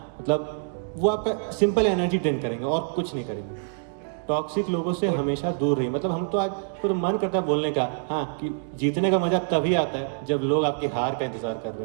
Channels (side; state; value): left; silent; digital silence